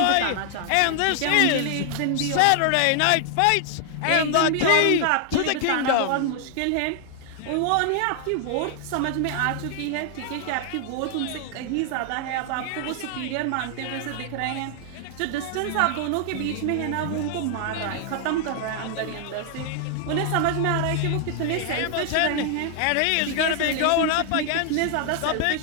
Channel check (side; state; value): both; different; correlation 0.00